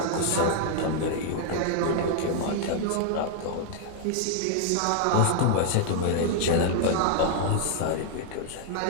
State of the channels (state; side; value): different; both; correlation -0.01